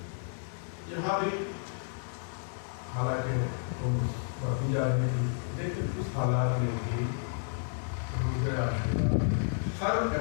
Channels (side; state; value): right; silent; 57 dB below the other